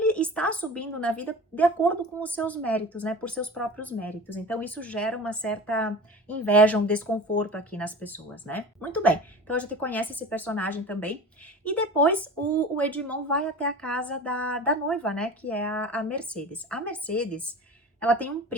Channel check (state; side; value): normal; both; correlation 0.36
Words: está subindo na vida de acordo com os seus méritos, né? Por seus próprios méritos. Então isso gera uma certa inveja, um desconforto aqui nas pessoas, né? Muito bem, então a gente conhece esse personagem também. E depois o Edmond vai até a casa da noiva, né? Que é a Mercedes. A Mercedes, ela tem um